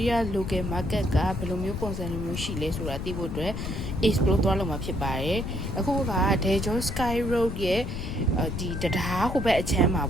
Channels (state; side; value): noise; left; rumble, 5 dB below the sound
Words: ီးယား local market ကဘယ်လိုမျိုးပုံစံမျိုးရှိလဲဆိုတာသိဖို့အတွက် explore သွားလုပ်မှာဖြစ်ပါတယ်အခုက Daejeon Sky Road ရဲ့ဒီတရားဟိုဘက်အချမ်းမှာ